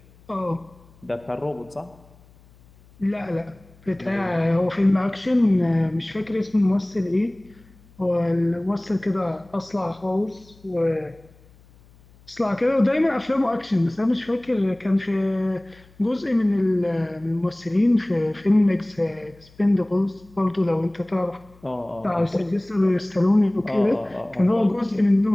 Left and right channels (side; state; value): left; noise; hum, 27 dB below the sound